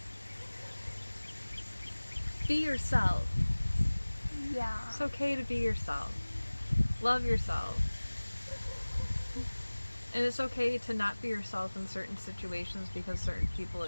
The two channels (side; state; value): both; inverted; correlation -1.00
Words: Be yourself. Yeah. It's okay to be yourself. Love yourself. And it's okay to not be yourself in certain situations because certain people